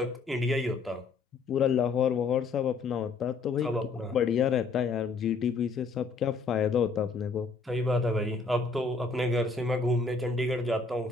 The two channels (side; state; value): right; quieter; 4.3 dB